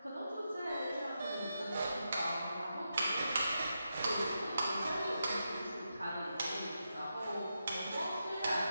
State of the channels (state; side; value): inverted; both; correlation -0.86